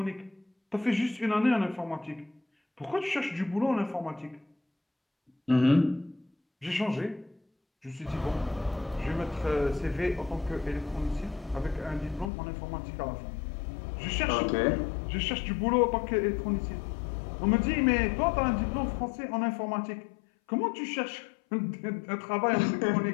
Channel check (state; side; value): drops out; right; at 12.3 s